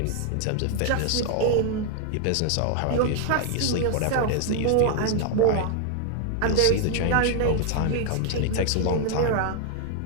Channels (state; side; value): different; both; correlation 0.00